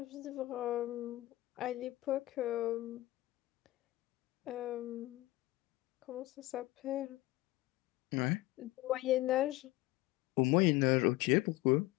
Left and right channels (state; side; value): quieter; right; 18.2 dB